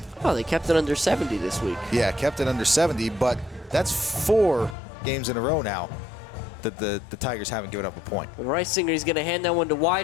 Oh, they kept it under 70 this week. Yeah, kept it under 70, but that's 4 games in a row now that the Tigers haven't given up a point. And Reisinger, he's going to hand that one to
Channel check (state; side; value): drops out; right; at 4.8 s